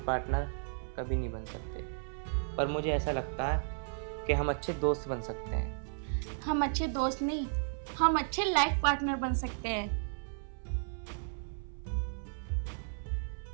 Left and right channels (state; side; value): silent; left; 55 dB below the other